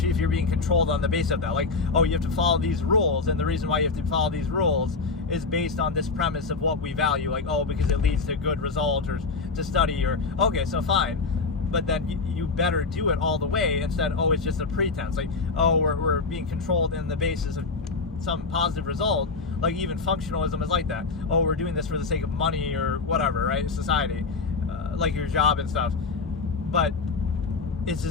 if you're being controlled on the basis of that. Oh, you have to follow these rules, and the reason why you have to follow these rules is based on this premise of what we value. Because it leads to a good result, or to study, or okay, so fine. But then you better do it all the way instead. Oh, it's just a pretense. We're being controlled in the basis of some positive result. Even functionalism is like that. Oh, we're doing this for the sake of money or whatever, right? Society, your job and stuff. But it's a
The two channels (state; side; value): quieter; right; 4.2 dB